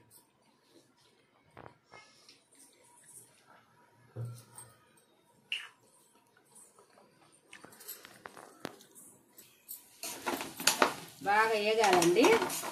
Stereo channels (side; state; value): both; identical; correlation 1.00